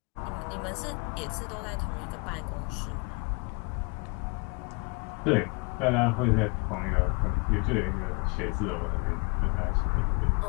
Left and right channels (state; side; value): quieter; right; 32.1 dB